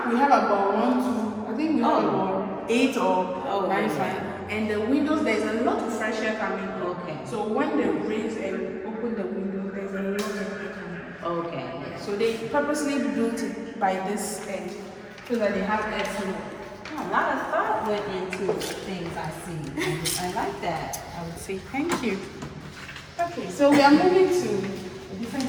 we have about 1, 2, I think we have about 8 or 9 fans. And the windows, there's a lot of fresh air coming in. Okay. So when they raise and open the window, there's a lot of air coming in. Okay. So they purposely built it by this end so that they have excellent. A lot of thought went into things I see. I like that. I would say thank you. Okay, so we are moving to a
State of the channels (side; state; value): both; identical; correlation 1.00